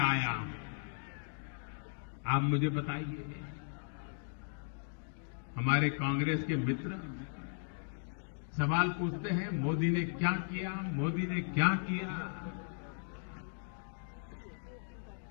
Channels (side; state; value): right; silent; digital silence